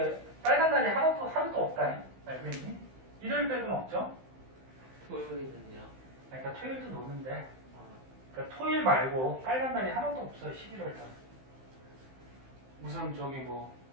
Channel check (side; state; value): left; late; 15 ms